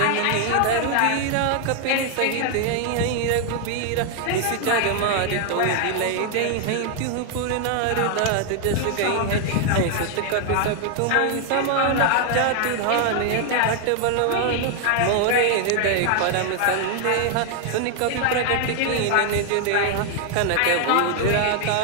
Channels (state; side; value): different; both; correlation 0.00